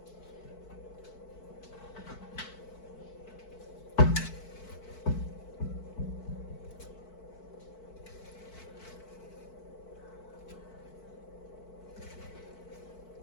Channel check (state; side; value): late; right; 4.6 ms